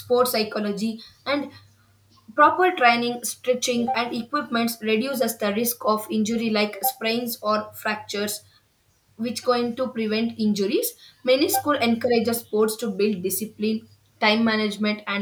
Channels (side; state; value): both; identical; correlation 1.00